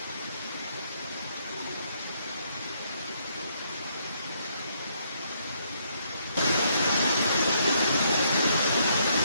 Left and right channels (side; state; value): both; inverted; correlation -0.72